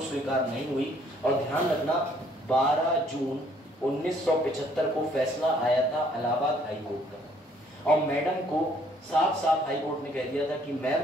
स्वीकार नहीं हुई। और ध्यान रखना, 12 जून 1975 को फैसला आया था इलाहाबाद हाई कोर्ट का, और मैडम को साफ साफ हाई कोर्ट ने कह दिया था कि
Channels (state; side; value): normal; both; correlation 0.63